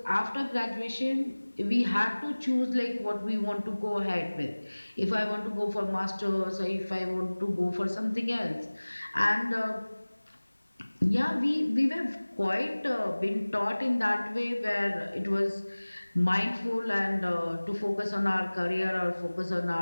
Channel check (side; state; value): both; inverted; correlation -1.00